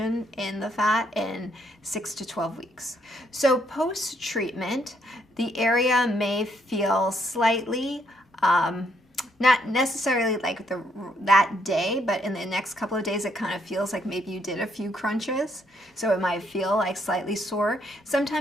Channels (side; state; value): both; normal; correlation 0.72